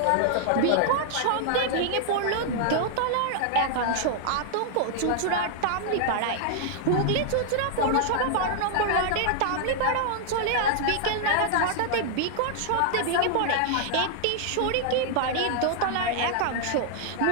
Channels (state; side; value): different; both; correlation -0.01